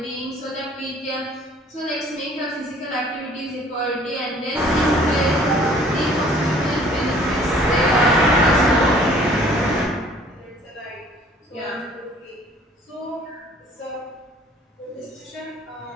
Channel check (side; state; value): both; normal; correlation 0.55